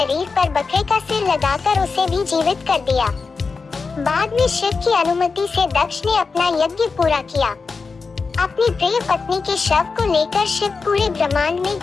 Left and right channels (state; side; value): quieter; right; 4.6 dB